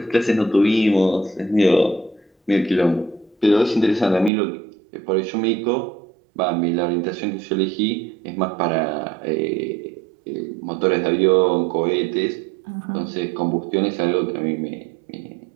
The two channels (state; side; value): drops out; left; at 4.3 s